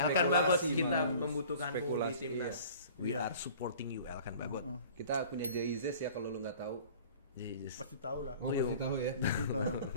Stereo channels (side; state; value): both; inverted; correlation -0.47